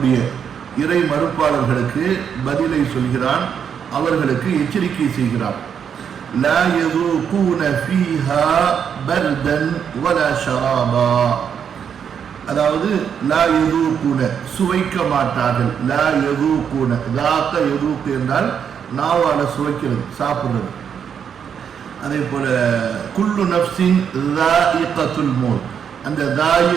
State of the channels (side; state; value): left; quieter; 7.7 dB